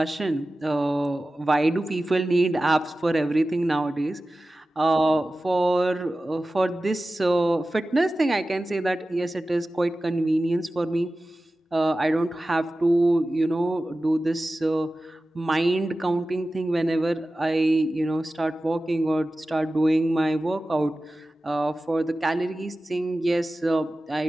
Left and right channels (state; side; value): normal; both; correlation 0.95